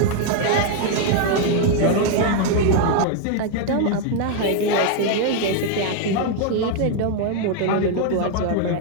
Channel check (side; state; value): both; different; correlation 0.00